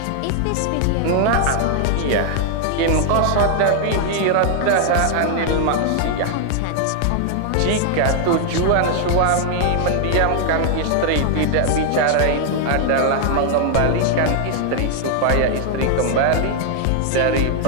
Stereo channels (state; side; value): different; both; correlation 0.00